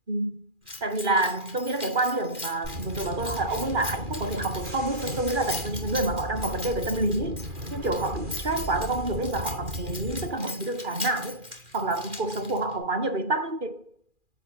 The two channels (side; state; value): left; late; 2.4 ms